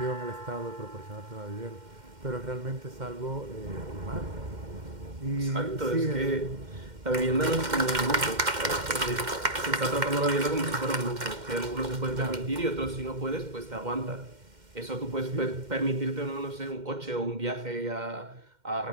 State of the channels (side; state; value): left; late; 2.1 ms